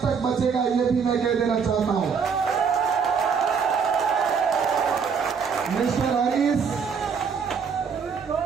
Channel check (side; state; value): left; quieter; 6.2 dB